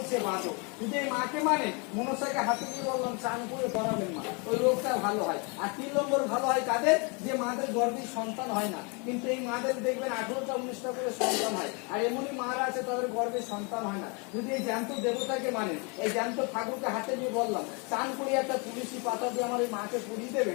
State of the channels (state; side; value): quieter; right; 32.7 dB